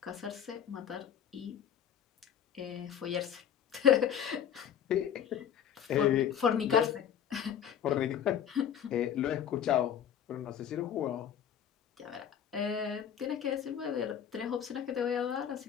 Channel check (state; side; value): quieter; right; 9.0 dB